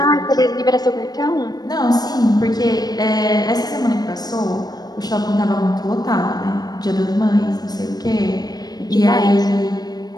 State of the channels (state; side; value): late; right; 0.19 ms